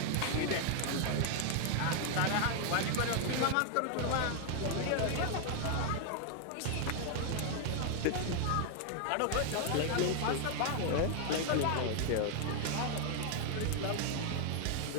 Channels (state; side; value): different; both; correlation 0.00